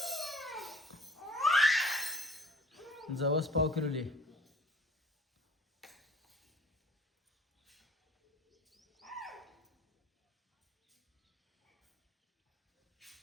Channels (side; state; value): both; normal; correlation 0.51